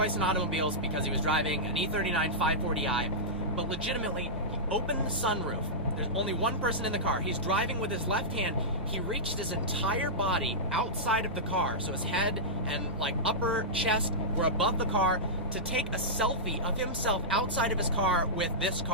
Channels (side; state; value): both; normal; correlation -0.12